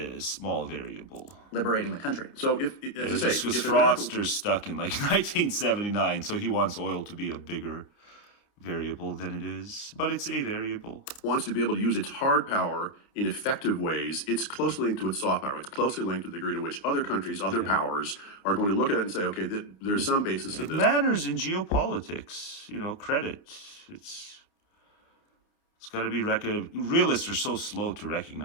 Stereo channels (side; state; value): right; late; 29 ms